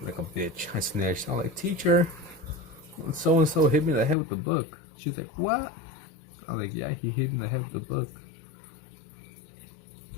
bitch. I snitched. I was like, teacher, so and so hit me in the head with the book. She's like, what? I was like, yeah, he hit me in the head with the book.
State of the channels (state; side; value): drops out; right; at 4.2 s